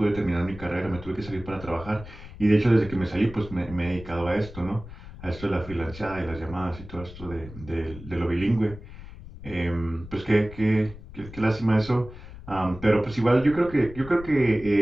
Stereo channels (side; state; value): left; noise; rumble, 15 dB below the sound